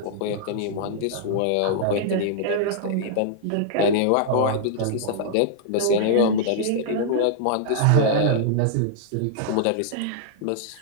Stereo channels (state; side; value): different; both; correlation -0.02